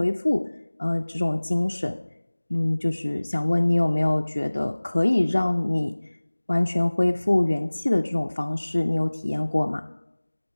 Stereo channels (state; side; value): inverted; both; correlation -1.00